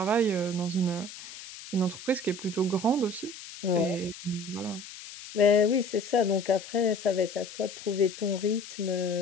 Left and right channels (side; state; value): left; noise; hiss, 14 dB below the sound